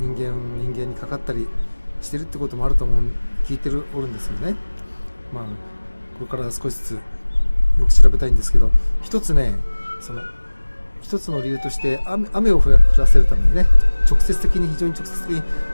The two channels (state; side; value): inverted; both; correlation -1.00